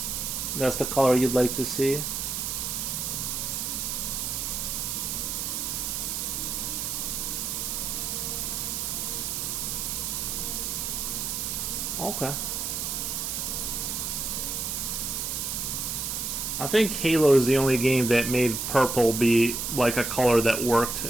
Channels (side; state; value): right; noise; hiss, 2 dB below the sound